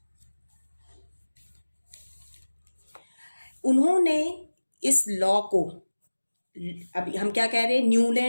उन्होंने इस लॉ को, अभी हम क्या कह रहे हैं,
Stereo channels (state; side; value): inverted; both; correlation -1.00